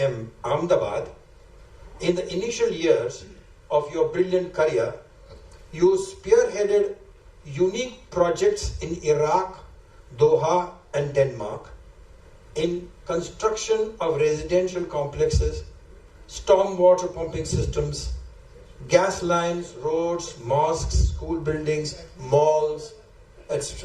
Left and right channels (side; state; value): both; identical; correlation 1.00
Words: Ahmedabad, in the initial years of your brilliant career, you spearheaded unique projects in Iraq, Doha, and Denmark, in construction of residential complexes, stormwater pumping systems, gas lines, roads, mosques, school buildings, malls,